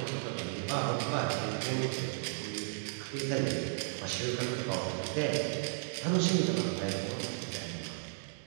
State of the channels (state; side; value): silent; left; digital silence